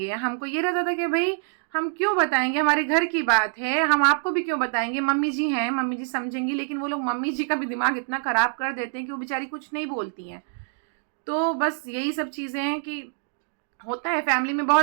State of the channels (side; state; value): left; silent; 61 dB below the other